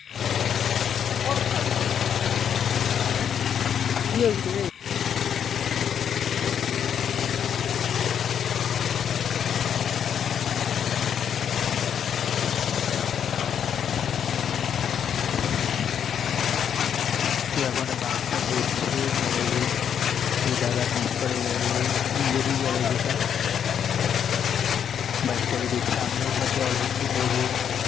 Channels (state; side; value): quieter; right; 8.4 dB